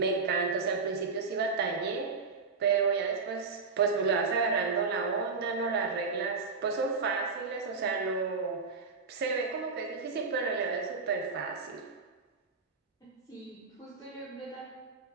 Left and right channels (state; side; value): quieter; left; 4.6 dB